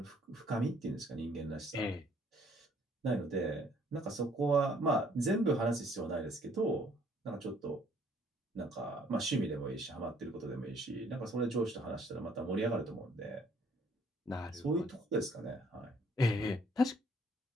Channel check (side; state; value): both; normal; correlation 0.62